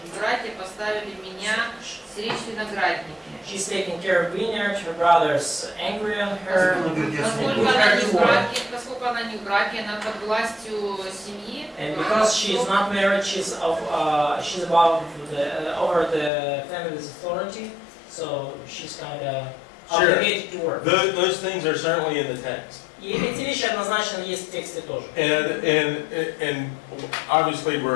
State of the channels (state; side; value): drops out; right; at 16.3 s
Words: братья поставили меня стеречь виноградники. She's taking care of vineyard. Her brother's angry on her. Поскольку она не в браке, она под властью семьи. And because she is not married, she's above over the family's authority. So she's kind of obligated to work. Those things are certainly in the text. И эти вещи однозначно есть в тексте тоже. And obviously